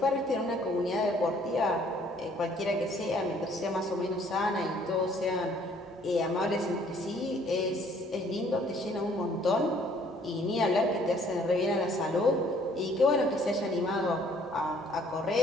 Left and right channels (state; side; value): normal; both; correlation 0.60